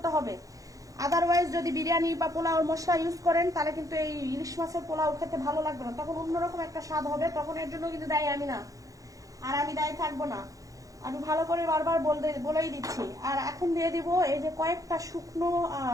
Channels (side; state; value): left; late; 0.17 ms